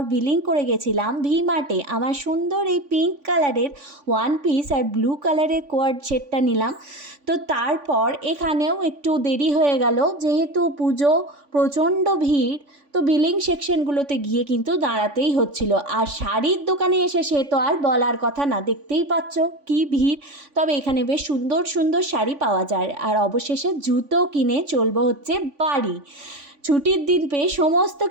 বিলিং করে গেছিলাম ভি মার্টে। আমার সুন্দর এই পিঙ্ক কালারের ওয়ান পিস আর ব্লু কালারের কোয়ার্ড সেটটা নিলাম। তো তারপর এখানেও একটু দেরি হয়ে গেল, যেহেতু পুজো, প্রচণ্ড ভিড়। তো বিলিং সেকশনগুলোতে গিয়ে কিন্তু দাঁড়াতেই হচ্ছিল। আর শাড়ির দোকানে এসে সে তো আর বলার কথা না, দেখতেই পাচ্ছ কি ভিড়। তবে এখানে বেশ সুন্দর সুন্দর শাড়ি পাওয়া যায়। আর অবশেষে জুতো কিনে চলবো হচ্ছে বাড়ি। ছুটির দিন পেয়ে সমস্ত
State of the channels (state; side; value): late; left; 3.5 ms